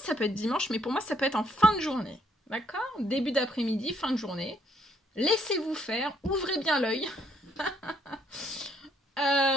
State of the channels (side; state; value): both; normal; correlation 0.69